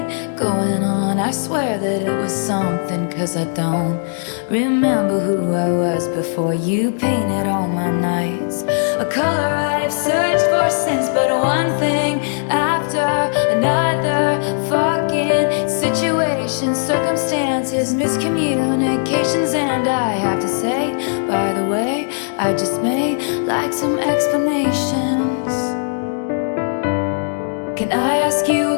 going on. I swear that it was something, 'cause I don't remember who I was before you painted all my nights a color I've searched for since. But one thing after another, fucking situations, circumstances, miscommunications. And I have to say, by the way, I just may like some explanations. Can I ask you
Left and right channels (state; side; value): silent; right; 65 dB below the other